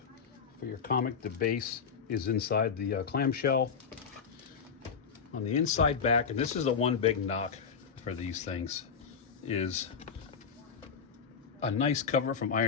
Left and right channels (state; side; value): quieter; right; 6.3 dB